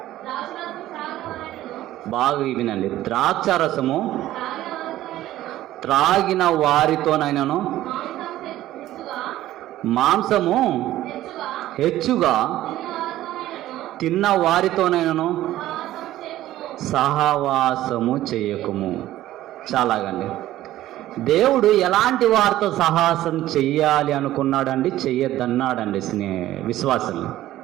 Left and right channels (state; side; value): quieter; left; 14.4 dB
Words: బాగా వినండి, ద్రాక్షారసము త్రాగిన వారితోనైనను మాంసము హెచ్చుగా తిన్న వారితోనైనను సహవాసము చేయకుము. చాలాగండి, దేవుడు ఎలాంటి వారితో సహవాసం చెయ్యాలి అనుకున్నాడండి, చెయ్యొద్దన్నాడండి విశ్వాసులు.